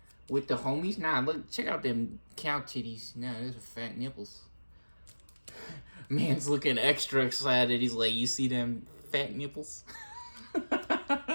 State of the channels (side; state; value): both; inverted; correlation -1.00